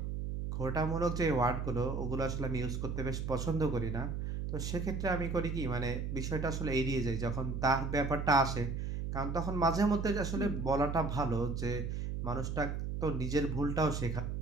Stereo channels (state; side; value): noise; right; hum, 3 dB below the sound